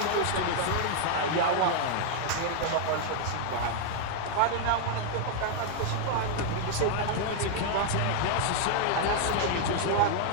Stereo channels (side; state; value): both; different; correlation 0.00